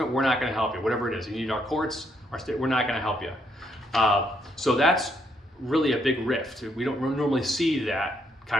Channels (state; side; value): normal; both; correlation 0.74